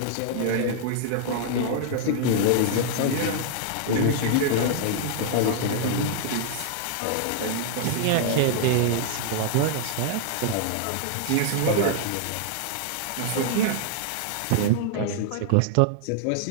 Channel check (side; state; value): both; different; correlation -0.01